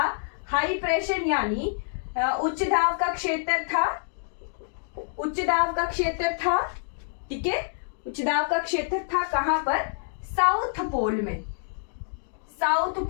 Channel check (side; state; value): right; silent; digital silence